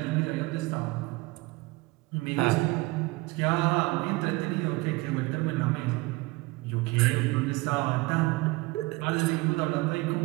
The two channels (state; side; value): quieter; left; 22.6 dB